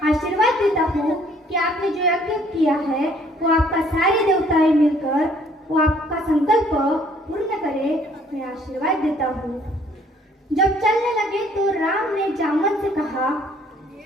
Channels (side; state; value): both; normal; correlation 0.60